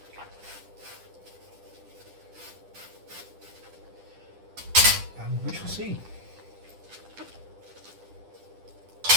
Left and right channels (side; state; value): left; late; 10 ms